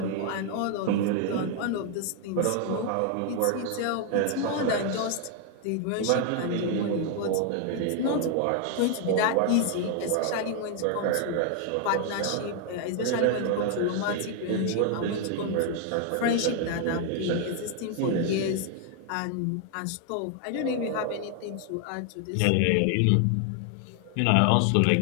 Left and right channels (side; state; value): both; different; correlation 0.00